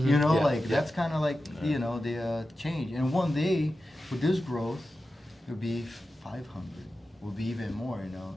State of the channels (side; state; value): both; normal; correlation 0.92